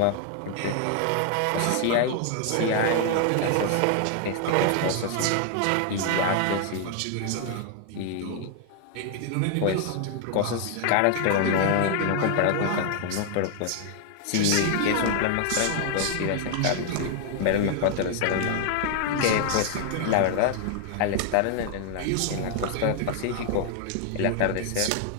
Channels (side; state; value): both; different; correlation 0.00